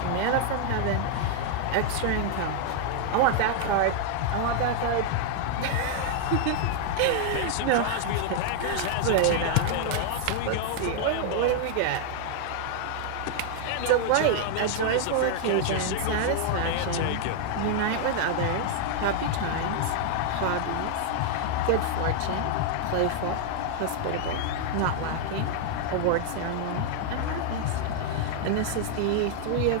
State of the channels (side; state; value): both; different; correlation 0.00